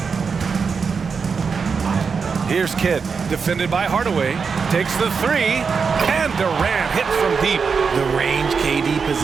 Here's Kidd, defended by Hardaway. Takes the 3, and Durant hits from deep. The range KD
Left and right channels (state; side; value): quieter; left; 5.5 dB